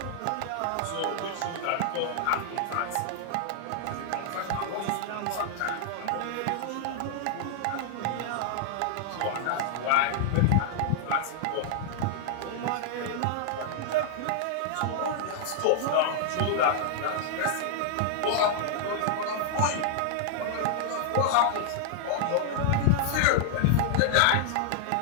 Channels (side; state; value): both; different; correlation -0.01